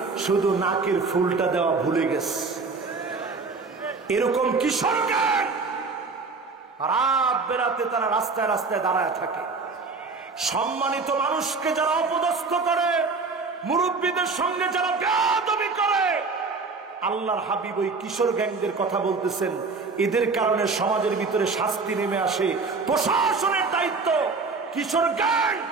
শুধু নাকের ফুলটা দেওয়া ভুলে গেছে। এরকম কিশোর গ্যাং রাত বেরাতে তারা রাস্তায় রাস্তায় দাঁড়ায় থাকে। সম্মানিত মানুষকে যারা অপদস্থ করে, মুরব্বীদের সঙ্গে যারা বেয়াদবি করে, আল্লাহর হাবিব ওই কিশোর গ্যাংদের কথা বলতেছেন। এদের কারণে সমাজের ভিতরে শাস্তি নেমে আসে। প্রশাসনের দায়িত্ব কিশোর গ্যাং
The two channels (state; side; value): quieter; left; 4.3 dB